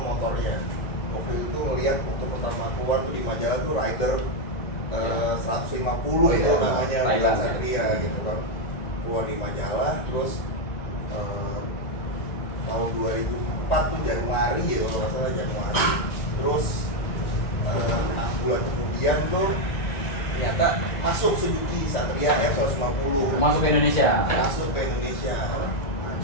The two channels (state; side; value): late; right; 2.0 ms